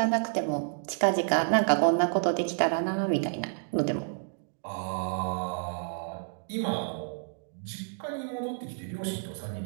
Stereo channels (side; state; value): left; silent; digital silence